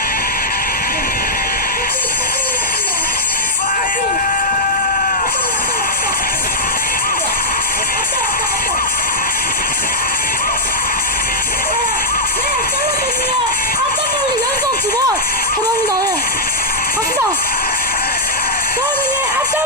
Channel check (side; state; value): both; normal; correlation -0.08